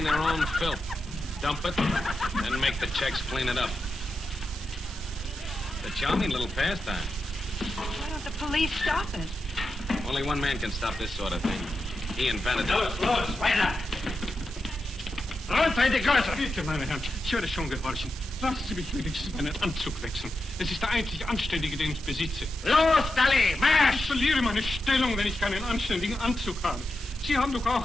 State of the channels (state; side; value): normal; both; correlation 0.89